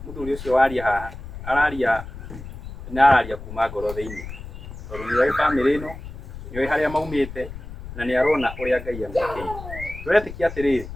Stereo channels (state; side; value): noise; left; rumble, 12 dB below the sound